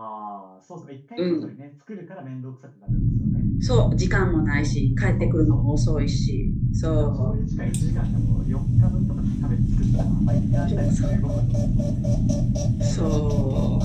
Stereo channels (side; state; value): both; identical; correlation 1.00